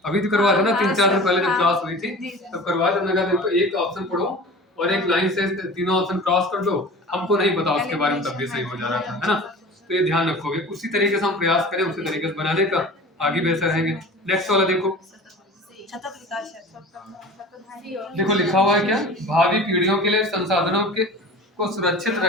अभी तो करवा थे ना 3-4 दिन पहले जब क्लास हुई थी तब करवा थे, हमने कहा देखो एक ऑप्शन पढ़ो और एक लाइन से तीनों ऑप्शन क्रॉस कर दो। हमको नहीं पता उसके बारे में, तब भी सही हो जा रहा था, है ना। तो ये ध्यान रखोगे, उसी तरीके से हम प्रयास करें, उसी तरीके से बनाने का, आगे बेहतर रहेंगे। नेक्स्ट वाला देखो, देखो लिखा हुआ है क्या, भावी पीढ़ियों के लिए संसाधनों के को सुरक्षित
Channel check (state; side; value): normal; both; correlation 0.38